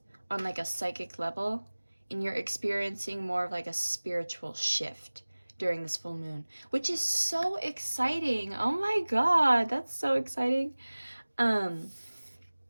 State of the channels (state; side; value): inverted; both; correlation -1.00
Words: on like a psychic level, and you're experiencing more of like a spiritual shift during this full moon, which is so exciting. Oh my god, that's so exciting.